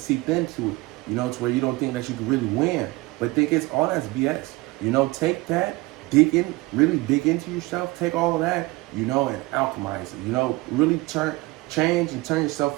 into it, to where you don't think that you can really win. But think it's all that's BS. Take that, really dig into yourself, take all of that, and alchemize it, really change and turn yourself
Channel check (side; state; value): left; quieter; 21.3 dB